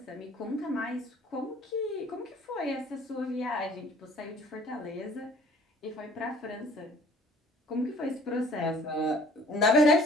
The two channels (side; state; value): both; normal; correlation 0.52